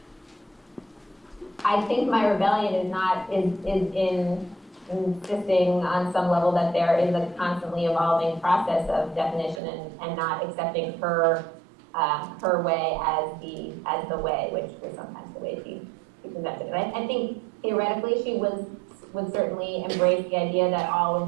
I think my rebellion is in insisting on some level that there is a constantly evolving process of definition and not accepting her way as the way, which was sometimes the way she presented it. I think theoretically she would certainly embrace the idea that all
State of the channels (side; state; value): left; drops out; at 9.6 s